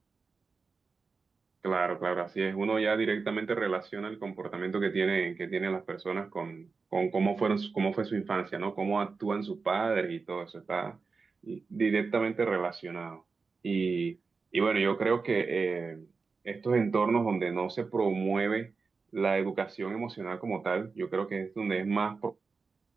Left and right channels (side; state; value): left; quieter; 4.6 dB